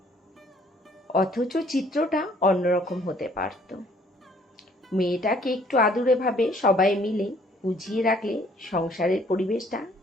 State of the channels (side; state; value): both; normal; correlation 0.61